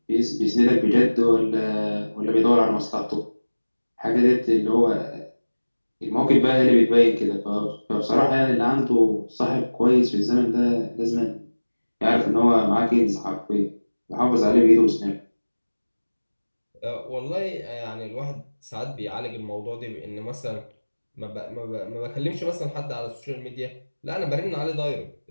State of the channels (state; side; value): inverted; both; correlation -1.00